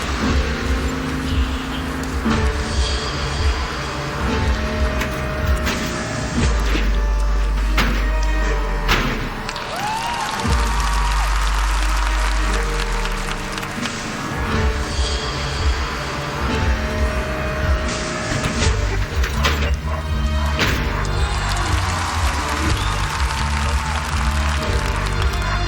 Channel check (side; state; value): both; identical; correlation 1.00